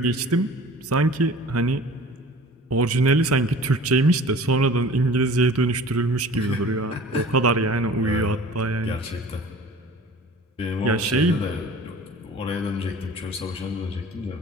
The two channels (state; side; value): normal; both; correlation 0.44